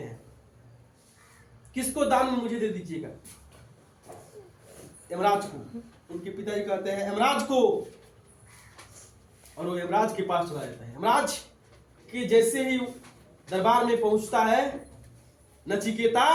किसको दान में मुझे दे दीजिएगा? यमराज को। उनके पिताजी कहते हैं यमराज को, और वो यमराज के पास चला जाता है। यमराज के जैसे ही दरबार में पहुंचता है नचिकेता,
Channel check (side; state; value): both; identical; correlation 1.00